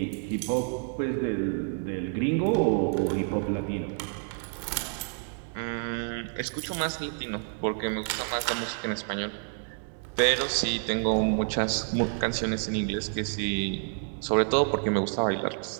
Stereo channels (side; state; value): left; silent; 57 dB below the other